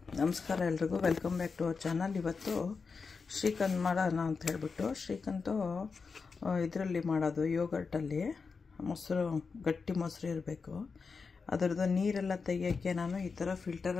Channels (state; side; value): quieter; right; 4.9 dB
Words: ನಮಸ್ಕಾರ ಎಲ್ರಿಗೂ, welcome back to our channel. ಇವತ್ತು ಶ್ರೀಖಂಡ್ ಮಾಡೋಣ ಅಂತ ಹೇಳ್ಬಿಟ್ಟು, ಶ್ರೀಖಂಡು ಇದರಲ್ಲಿ ಮಾಡೋದು ಯೋಗರ್ಟಲ್ಲಿ. ಮೊಸರು, ಗಟ್ಟಿ ಮೊಸರು ಇರಬೇಕು. ಅದರದ್ದು ನೀರೆಲ್ಲ ತೆಗಿಯೋಕ್ಕೆ ನಾನು ಈ ಥರ